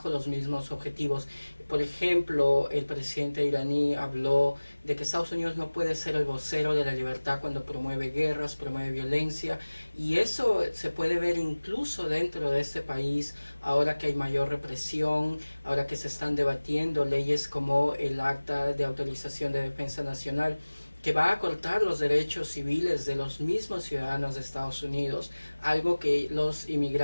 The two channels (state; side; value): inverted; both; correlation -1.00